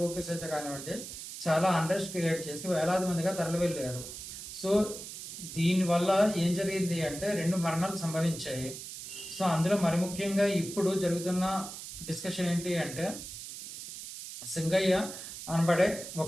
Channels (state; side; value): noise; right; hiss, 10 dB below the sound